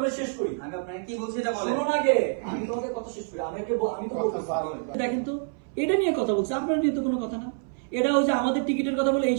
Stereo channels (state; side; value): silent; left; 60 dB below the other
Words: শেষ করি আমি আপনাকে কি বলছি এটা বলেন। শুনুন আগে আমি তোমাকে কথা শেষ করি আমি তো বলতেছি দেখেন তো এটা নিয়ে কথা বলছে আপনার নিয়ে তো কোনো কথা না এটা হচ্ছে আমাদের টিকিটের কথা বলে এই